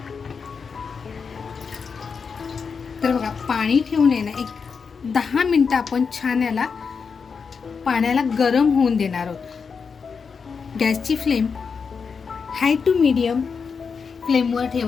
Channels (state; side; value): quieter; right; 5.6 dB